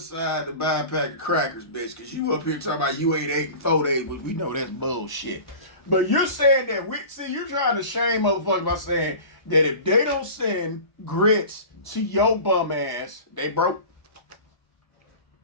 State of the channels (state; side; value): late; right; 1.0 ms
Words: to buy a pack of crackers, bitch, because you up here talking about you ain't 8 and 4 days. We know that's bullshit. But you're saying that you're trying to shame motherfuckers by saying that if they don't send grits to your bum ass, they broke.